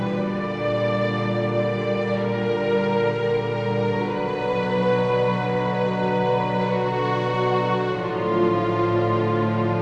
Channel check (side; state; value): both; identical; correlation 1.00